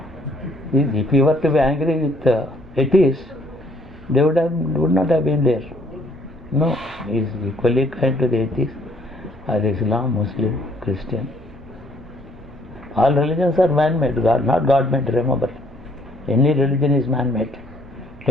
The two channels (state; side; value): normal; both; correlation 0.63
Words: If he were to be angry with atheists, they would not have been there. No, he is equally kind to the atheists, or Islam, Muslim, Christian. All religions are man-made, not God-made, remember. Any religion is man-made.